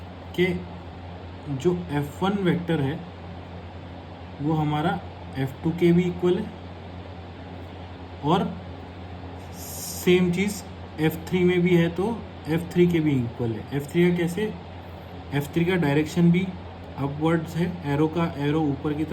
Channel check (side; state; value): both; identical; correlation 1.00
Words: कि जो F1 वेक्टर है वो हमारा F2 के भी इक्वल है, और सेम चीज़ F3 में भी है तो F3 के भी इक्वल है। F3 का कैसे, F3 का डायरेक्शन भी अपवर्ड्स है, एरो का एरो ऊपर की